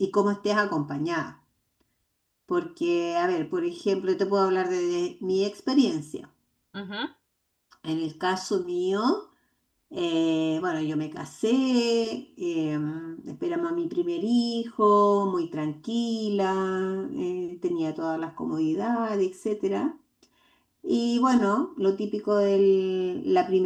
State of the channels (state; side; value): identical; both; correlation 1.00